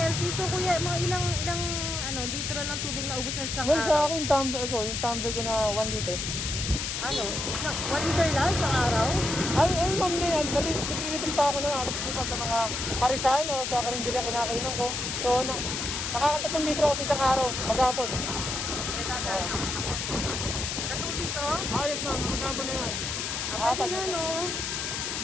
So kuya, mga ilang litro ng tubig na ubos na sa isang Well, sa araw? akin, yung tumbler ko na 1 liter. 1 liter lang sa araw? Ay, ma'am na yan. Nag-refill pa ako ng alas dito sa mga parisan o sa karinderya kinakainan ko. So, nakaka-3 litro ako sa isang araw, maghapon. Tatong dito? Ayos ma'am, maghapon na yan. Pati na, no?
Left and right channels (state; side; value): noise; left; hiss, 3 dB below the sound